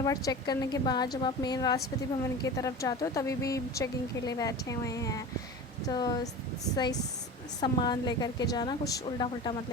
बार चेक करने के बाद जब आप मेन राष्ट्रपति भवन की तरफ जाते हो तभी भी चेकिंग के लिए बैठे हुए हैं। तो सही सामान लेकर के जाना, कुछ उल्टा पुल्टा मत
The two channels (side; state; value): both; normal; correlation 0.32